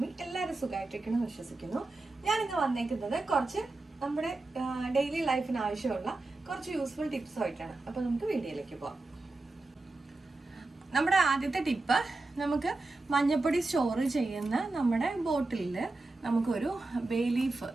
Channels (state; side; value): quieter; left; 3.2 dB